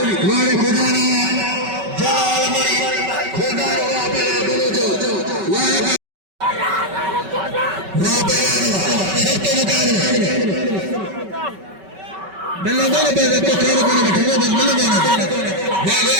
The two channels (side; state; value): left; late; 5.2 ms